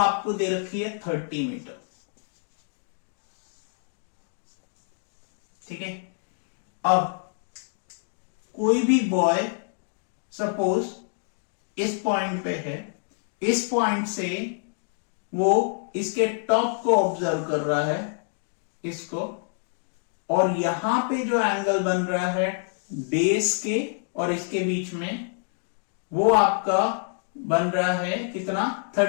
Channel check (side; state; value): right; silent; 60 dB below the other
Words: दे रखी है 30 मीटर, ठीक है। अब कोई भी बॉय सपोज इस पॉइंट पे है, इस पॉइंट से वो इसके टॉप को ऑब्जर्व कर रहा है, इसको, और यहां पे जो एंगल बन रहा है बेस के और इसके बीच में, वो आपका बन रहा है कितना,